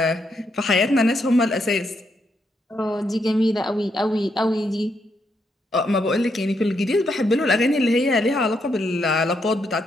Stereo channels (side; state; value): both; normal; correlation 0.78